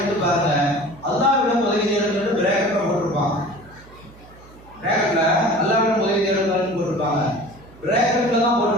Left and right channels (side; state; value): right; noise; hum, 23 dB below the sound